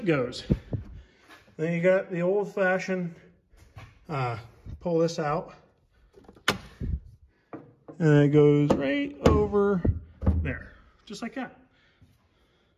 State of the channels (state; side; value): identical; both; correlation 1.00